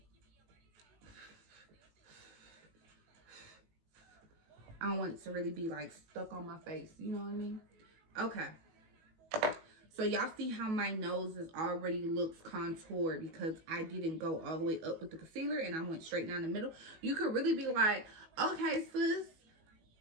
I don't want it to really be like stuck on my face. You know what I mean? Okay. So y'all see how my nose is already looks contoured because I didn't go all the way up with the concealer and I went straight down the middle. You could really be like, okay, sis,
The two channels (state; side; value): late; left; 18 ms